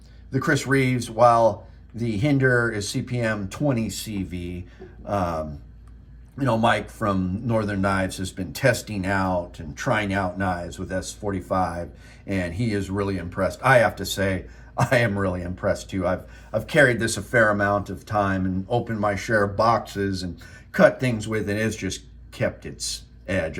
the Chris Reeves, while the Hinderer is CPM 20 CV. Mike from Northern Knives has been testing out and trying out knives with S45, and he is really impressed. I have to say, I am really impressed too. I've carried this a fair amount of time and opened my share of boxes and cut things with, and it's just kept its edge.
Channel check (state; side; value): identical; both; correlation 1.00